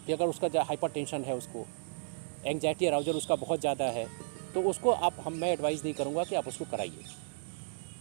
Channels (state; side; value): silent; left; digital silence